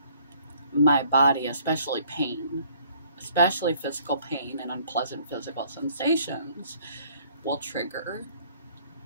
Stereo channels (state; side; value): inverted; both; correlation -0.59